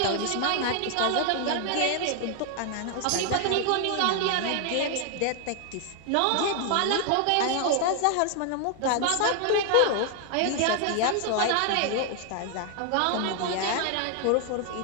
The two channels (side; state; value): both; different; correlation 0.00